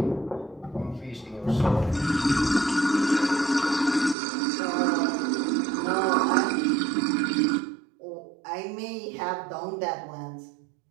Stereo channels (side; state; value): left; drops out; at 4.2 s